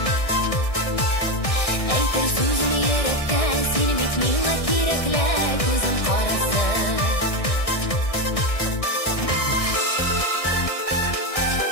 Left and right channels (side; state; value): right; late; 1.6 ms